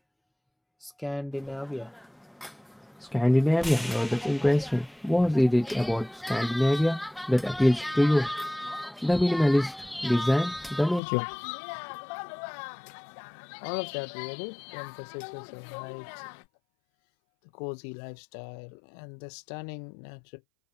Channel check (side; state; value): right; drops out; at 11.0 s